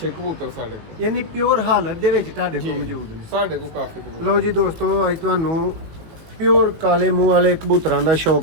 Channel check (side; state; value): left; late; 18 ms